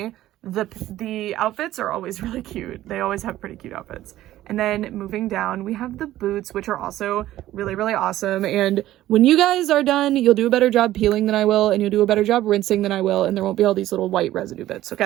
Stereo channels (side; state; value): left; quieter; 14.4 dB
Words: the outfits are always really cute. They always have pretty cute outfits. And then moving down, we have the boots, which are also really, really awesome. And when you guys are done, you'll do a better job peeling than I will, and you'll do a better job rinsing than I will, and there won't be all these little white residue bits,